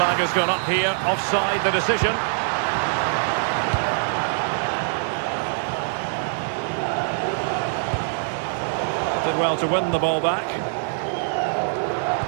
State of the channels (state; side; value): silent; left; digital silence